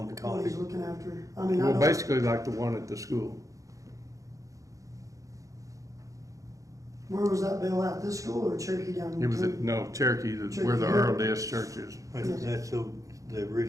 to what he's copy. looking after. I mean, I Well, don't, basically like the one at the school. where was that bill at, this school or Cherokee down? It was at, between? no, Cherokee, where the Earl Des Church is. That's the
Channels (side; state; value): left; late; 0.16 ms